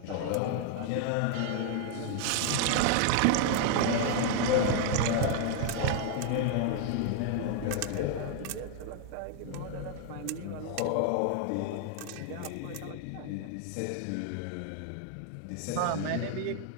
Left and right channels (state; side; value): different; both; correlation 0.00